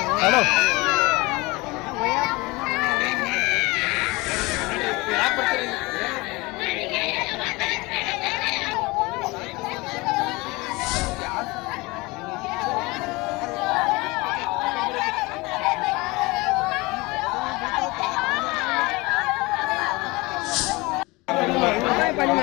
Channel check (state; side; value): quieter; right; 23.6 dB